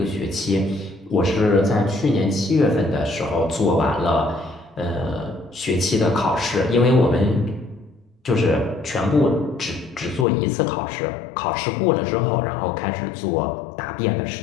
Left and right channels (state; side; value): drops out; right; at 10.2 s